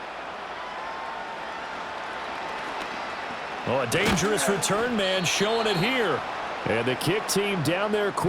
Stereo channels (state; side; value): identical; both; correlation 1.00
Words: Oh, a dangerous return man showing it here. And the kick team down there